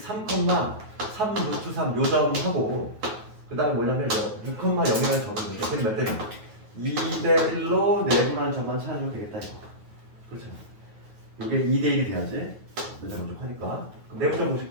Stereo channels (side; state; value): left; late; 9.3 ms